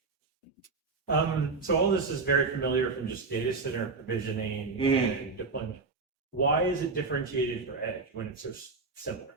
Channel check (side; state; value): left; quieter; 4.2 dB